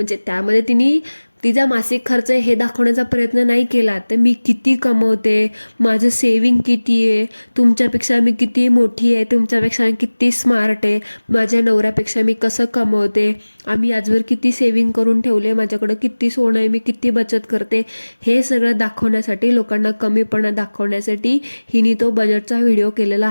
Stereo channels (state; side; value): inverted; both; correlation -1.00